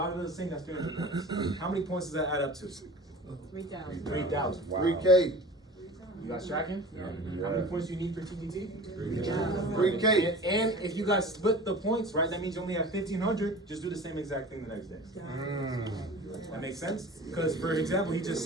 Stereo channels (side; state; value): both; normal; correlation 0.38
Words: does the same. That's 300 points. How many points does that add up to? 3,000. 3,000. Wow. 3K. You guys tracking? How many points do you need for TTT? 3K. And if you guys split the points, right, that means you only have 1,500. Just do the same exact thing the next day. That makes sense? Because, for example, he just